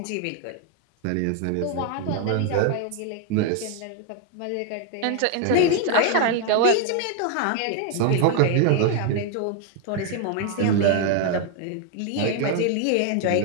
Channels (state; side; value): different; both; correlation 0.00